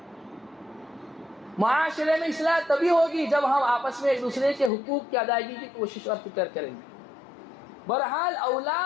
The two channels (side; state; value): right; drops out; at 4.7 s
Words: معاشرے میں اصلاح تبھی ہوگی جب ہم آپس میں ایک دوسرے کے حقوق کی ادائیگی کی کوشش اور فکر کریں گے۔ بہرحال